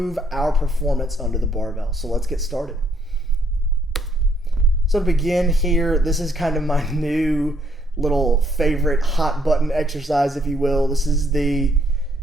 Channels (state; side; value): normal; both; correlation 0.69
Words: our performance under the barbell. So let's get started. So to begin here, this is kind of my new little favorite hot button exercise, if you will. This is the